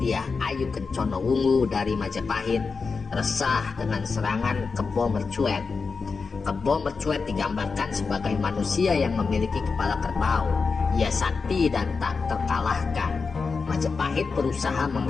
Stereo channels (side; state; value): right; quieter; 4.8 dB